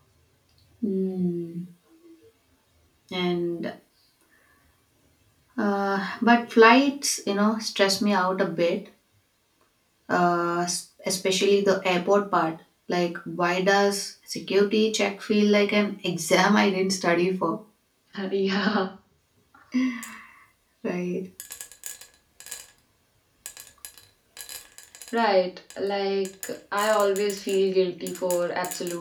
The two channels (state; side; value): identical; both; correlation 1.00